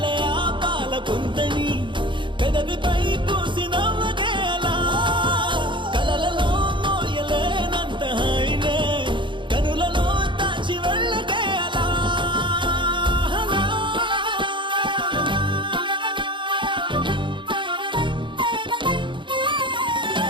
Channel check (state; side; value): late; left; 0.23 ms